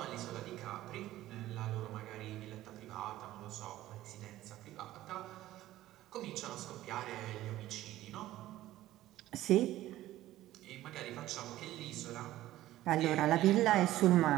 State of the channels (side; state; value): left; quieter; 14.9 dB